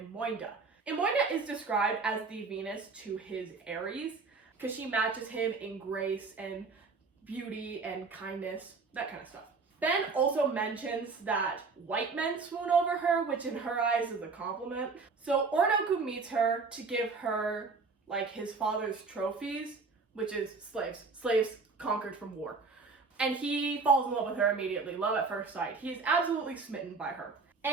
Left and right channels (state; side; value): quieter; left; 4.4 dB